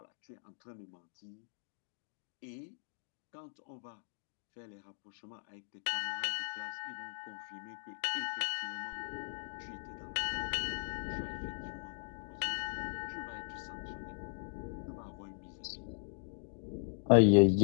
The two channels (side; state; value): right; silent; digital silence